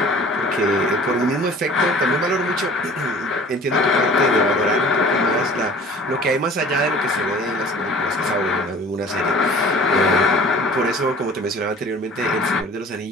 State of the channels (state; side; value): normal; both; correlation 0.47